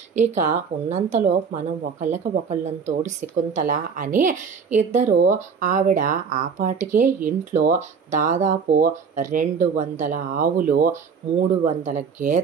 ఇక ఉన్నంతలో మనం ఒకళ్ళని తోడు శకుంతల అని ఇద్దరు ఆవిడ ఆపాటికే ఇంట్లో దాదాపు 200 ఆవులు, 300 వందల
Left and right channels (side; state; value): left; quieter; 6.1 dB